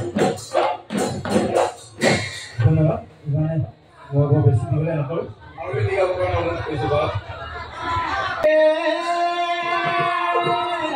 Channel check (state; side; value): identical; both; correlation 1.00